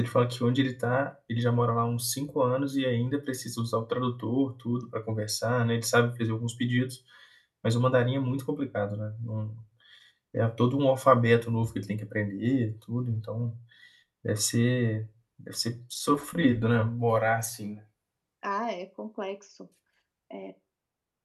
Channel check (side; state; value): both; identical; correlation 1.00